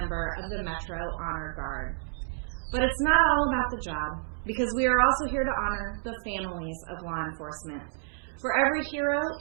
of the Metro Honor Guard. But it's not all about the job, because we are also here to honor the families of law enforcement. For every hero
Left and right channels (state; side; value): silent; left; digital silence